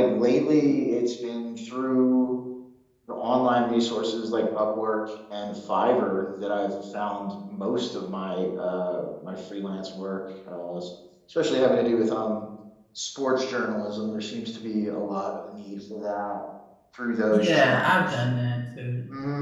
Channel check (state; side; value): identical; both; correlation 1.00